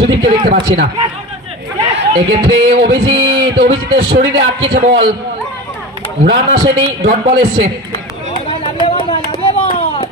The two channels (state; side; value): normal; both; correlation 0.30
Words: দেখতে পাচ্ছি না এক্ষেত্রে অভিজিতের শরীরে আটকেছে বল রান আসেনি ডট বল এসছে